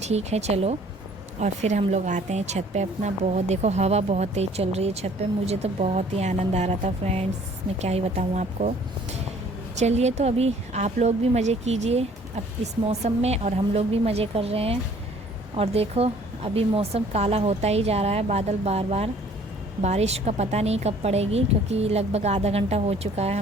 है चलो, और फिर हम लोग आते हैं छत पे अपना। बहुत देखो हवा बहुत तेज़ चल रही है छत पे, मुझे तो बहुत ही आनंद आ रहा था फ्रेंड्स, मैं क्या ही बताऊँ आपको। चलिए तो अभी आप लोग भी मज़े कीजिए अब इस मौसम में, और हम लोग भी मज़े कर रहे हैं। और देखो अभी मौसम काला होता ही जा रहा है, बादल बार बार, बारिश का पता नहीं कब पड़ेगी, क्योंकि लगभग आधा घंटा हो चुका है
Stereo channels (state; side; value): normal; both; correlation 0.56